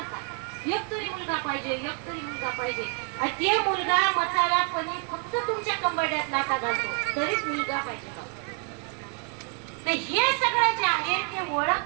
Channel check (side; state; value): left; quieter; 38.0 dB